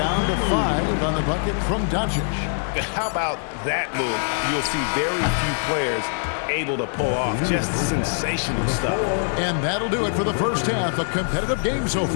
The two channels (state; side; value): silent; right; 60 dB below the other